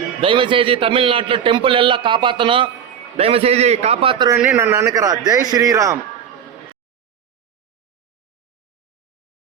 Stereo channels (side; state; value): left; quieter; 8.3 dB